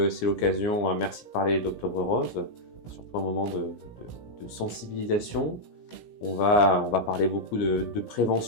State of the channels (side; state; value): right; late; 17 ms